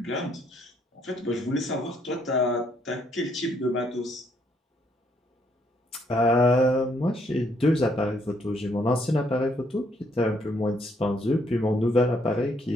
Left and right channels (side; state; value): both; normal; correlation 0.70